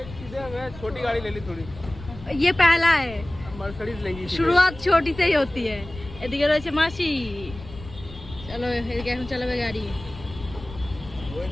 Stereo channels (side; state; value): left; noise; rumble, 15 dB below the sound